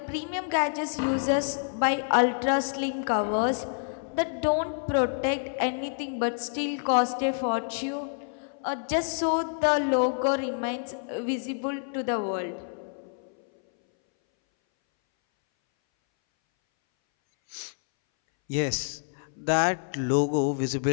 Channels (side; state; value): right; silent; 59 dB below the other